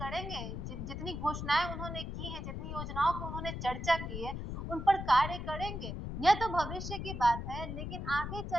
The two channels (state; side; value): noise; left; rumble, 5 dB below the sound